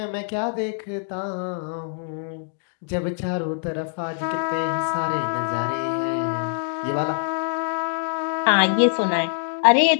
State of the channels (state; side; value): silent; right; digital silence